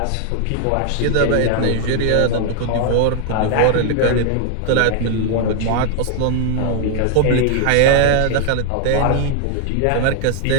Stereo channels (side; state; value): both; different; correlation 0.00